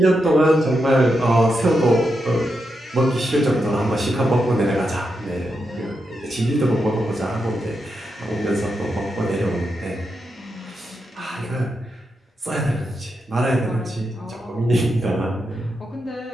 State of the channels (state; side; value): normal; both; correlation 0.85